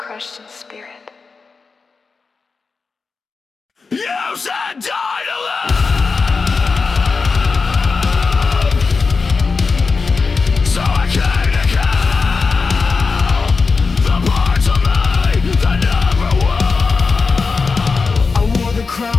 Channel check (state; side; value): quieter; right; 4.5 dB